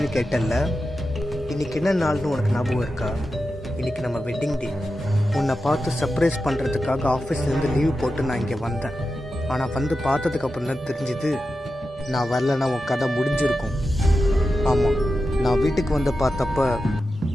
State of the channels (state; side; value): normal; both; correlation 0.91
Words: கேட்டல்ல, இன்னைக்கு என்ன நாள்னு உனக்கு ஞாபகம் இருக்கா? இன்னைக்கு நம்ம வெட்டிங் டே. உன்னை பார்த்து சர்ப்ரைஸ் பண்ணுறதுக்காக ஆஃபீஸ்லேருந்து லீவ் போட்டு நான் இங்கே வந்தேன். ஆனால் வந்து பார்த்ததுக்கு அப்புறம் தான் தெரிஞ்சுது நான் வரலன்னா உன் கதை முடிஞ்சிருக்கும். ஆமாம், நான் வீட்டுக்கு வந்து பார்த்தப்ப